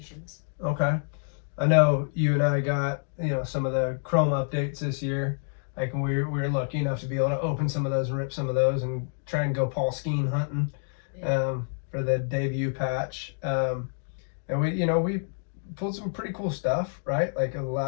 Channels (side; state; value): right; silent; digital silence